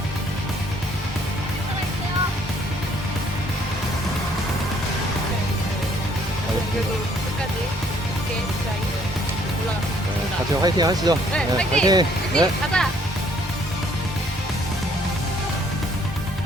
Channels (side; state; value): both; normal; correlation 0.63